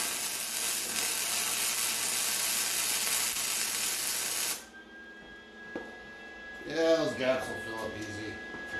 Yeah, those gaps will fill up easy.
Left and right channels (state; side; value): identical; both; correlation 1.00